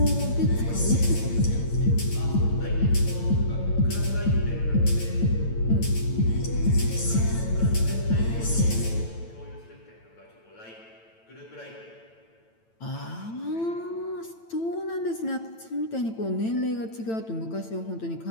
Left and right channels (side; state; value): right; late; 9.0 ms